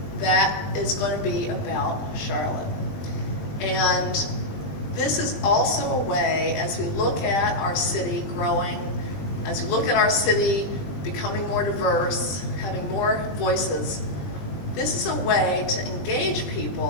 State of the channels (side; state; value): right; late; 20 ms